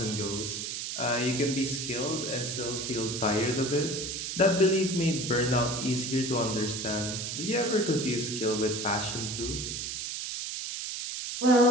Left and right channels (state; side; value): noise; right; hiss, 4 dB below the sound